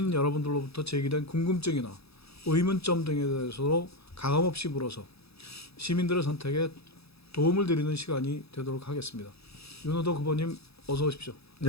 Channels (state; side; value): late; right; 0.78 ms